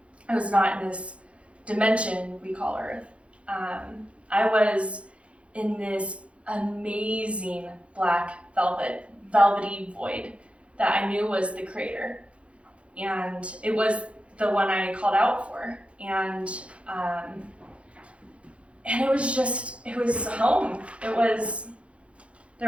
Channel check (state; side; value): late; left; 0.061 ms